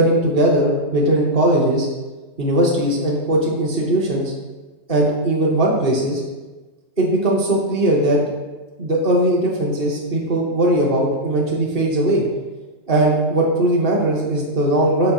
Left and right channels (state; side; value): late; right; 2.7 ms